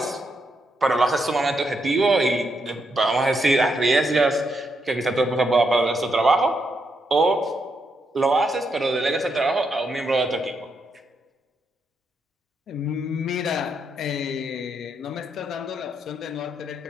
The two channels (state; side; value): normal; both; correlation 0.80